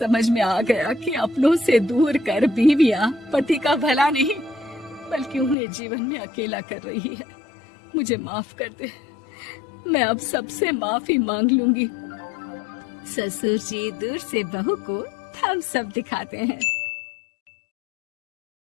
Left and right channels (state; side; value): drops out; right; at 5.6 s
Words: में आ गया कि अपनों से दूर कर बीवियां पति का भला नहीं बल्कि उन्हें जीवन में अकेला कर रही है। मुझे माफ कर दे, मैं अब सबसे माफी मांग लूंगी। ससुर जी दूर से बहू को थम्स अप दिखाते हैं।